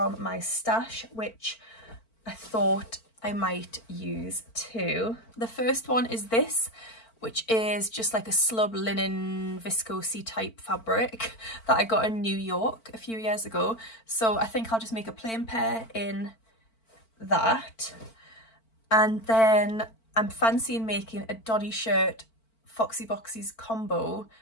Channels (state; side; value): late; right; 4.5 ms